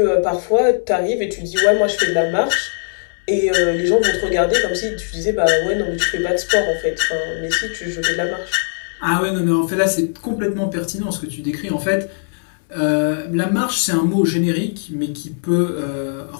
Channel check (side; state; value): right; silent; digital silence